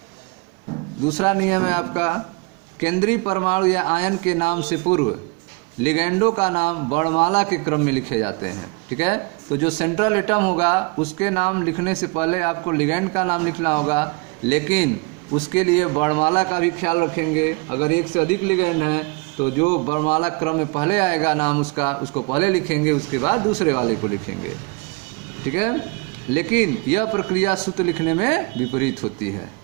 दूसरा नियम है आपका केंद्रीय परमाणु या आयन के नाम से पूर्व लिगेंडों का नाम वर्णमाला के क्रम में लिखे जाते हैं। ठीक है, तो जो सेंट्रल एटम होगा उसके नाम लिखने से पहले आपको लिगेंड का नाम लिखना होगा, लेकिन उसके लिए वर्णमाला का भी ख्याल रखेंगे। अगर एक से अधिक लिगेंड हैं तो जो वर्णमाला क्रम में पहले आएगा नाम उसको पहले लिखेंगे, उसके बाद दूसरे वाले को लिखेंगे। ठीक है, लेकिन यह प्रक्रिया सूत्र लिखने में विपरीत होती है।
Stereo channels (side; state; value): left; quieter; 29.3 dB